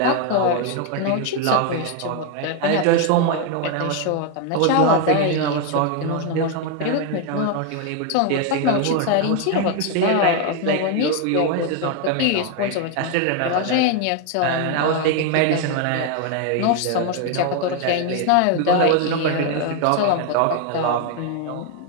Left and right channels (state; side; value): different; both; correlation 0.01